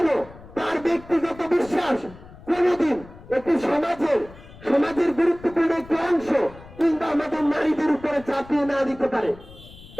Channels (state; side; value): noise; left; rumble, 19 dB below the sound